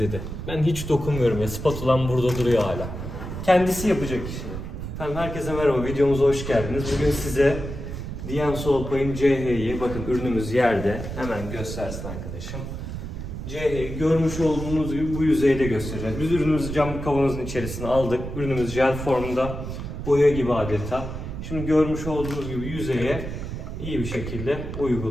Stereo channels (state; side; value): noise; right; rumble, 7 dB below the sound